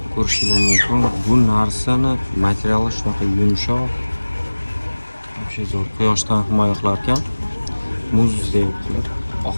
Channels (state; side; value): inverted; both; correlation -1.00